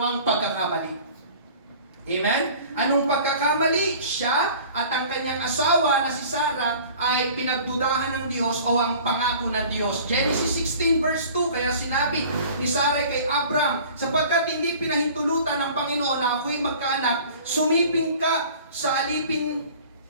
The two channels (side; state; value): both; inverted; correlation -0.46